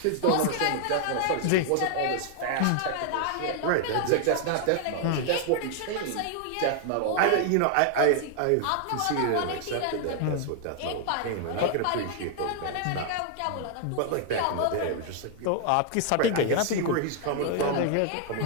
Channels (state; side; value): different; both; correlation 0.00